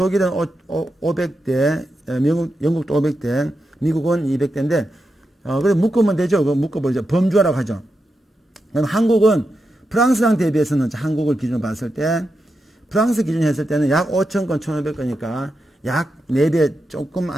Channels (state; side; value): normal; both; correlation 0.87